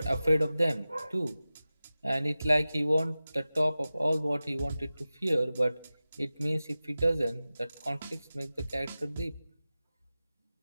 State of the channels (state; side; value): inverted; both; correlation -0.96